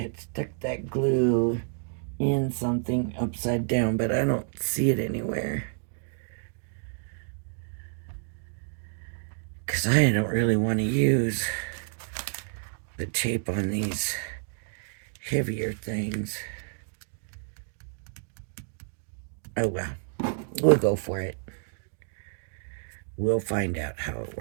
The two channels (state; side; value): silent; left; digital silence